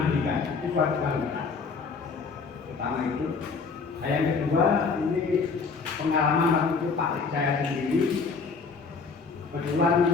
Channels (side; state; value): right; quieter; 4.9 dB